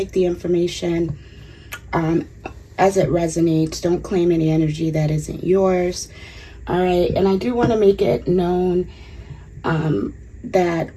the information as it resonates. Don't claim any energy that isn't yours. All right, and I do want to make it known that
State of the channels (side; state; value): both; identical; correlation 1.00